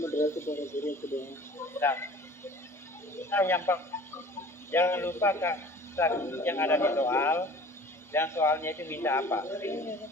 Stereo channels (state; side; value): normal; both; correlation 0.45